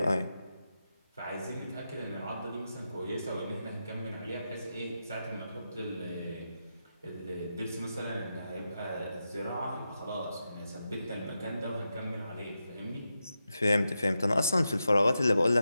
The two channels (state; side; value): inverted; both; correlation -0.88